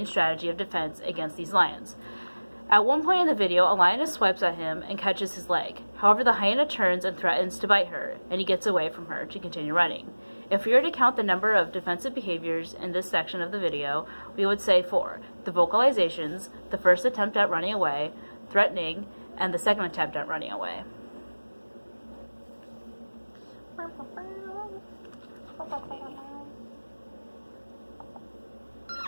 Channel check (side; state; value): both; inverted; correlation -1.00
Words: strategy of defense against these lions. At one point in the video, a lioness swipes at him and catches his leg. However, the hyena turns and threatens to bite her, and he gets away from her to continue running. If we were to count the number of defensive behaviors in this section of the video, we would say 4. The vocalizations, the first attempt at running away, threatening, and the second attempt at running away.